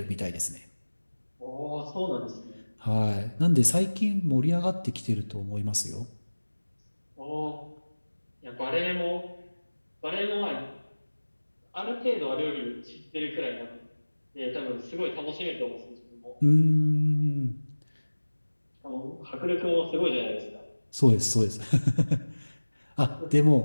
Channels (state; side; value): inverted; both; correlation -1.00